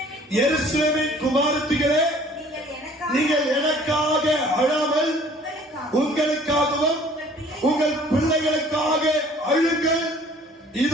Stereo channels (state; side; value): normal; both; correlation 0.53